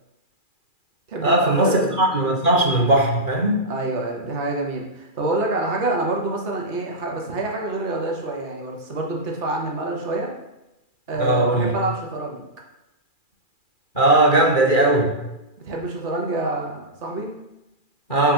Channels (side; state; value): right; late; 2.4 ms